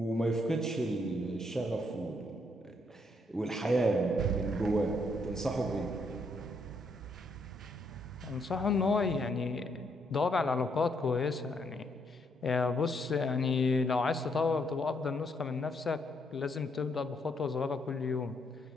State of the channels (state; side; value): normal; both; correlation 0.74